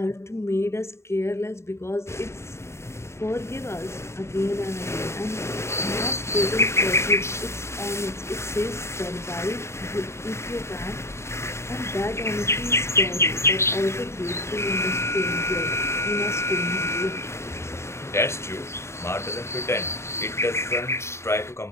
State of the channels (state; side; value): late; right; 0.13 ms